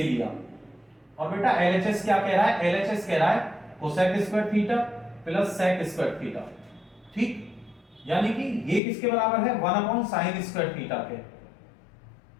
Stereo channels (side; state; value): right; drops out; at 8.8 s